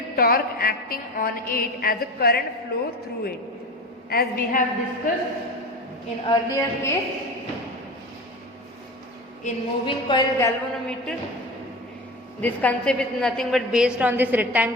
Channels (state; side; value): normal; both; correlation 0.30